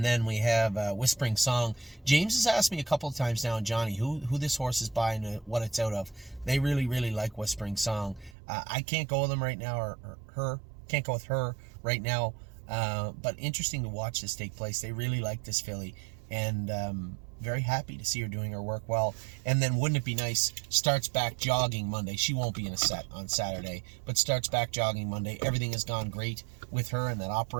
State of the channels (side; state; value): left; drops out; at 8.3 s